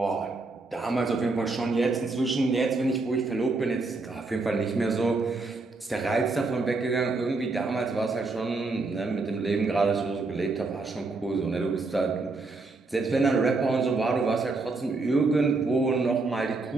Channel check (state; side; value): quieter; left; 3.6 dB